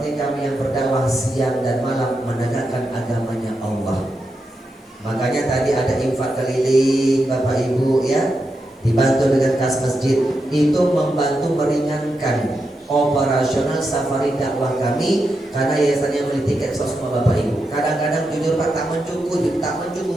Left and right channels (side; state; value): both; normal; correlation 0.86